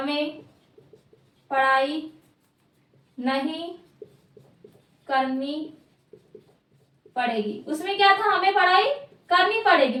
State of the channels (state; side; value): identical; both; correlation 1.00